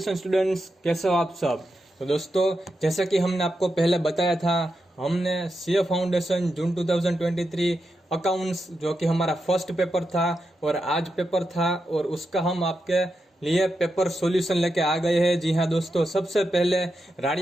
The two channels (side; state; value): both; normal; correlation 0.87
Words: students, कैसे हो आप सब। तो दोस्तों, जैसा कि हमने आपको पहले बताया था, हमने सीए फाउंडेशन जून 2023 अकाउंट्स जो कि हमारा फर्स्ट पेपर था और आज पेपर था, और उसका हम आपके लिए पेपर सॉल्यूशन लेके आ गए हैं। जी हाँ दोस्तों, सबसे पहले